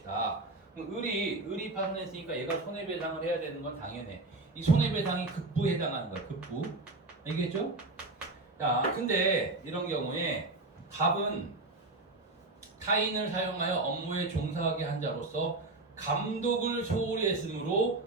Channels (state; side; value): quieter; left; 3.0 dB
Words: 그럼 을이 파손했으니까 얘가 손해배상을 해야 되는 건 당연해. 이 손해배상이 급부에 해당하는 거야. 급부. 알겠죠? 자, 근데 이런 경우에 갑은 타인을 사용하여 업무에 종사하게 한 자로서 감독을 소홀히 했으므로